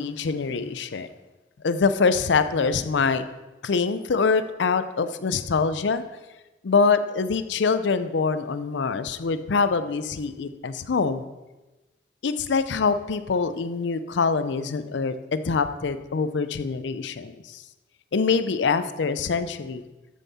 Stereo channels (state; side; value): quieter; right; 4.5 dB